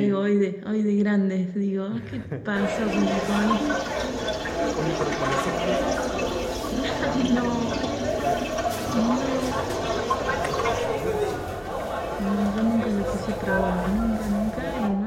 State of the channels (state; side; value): identical; both; correlation 1.00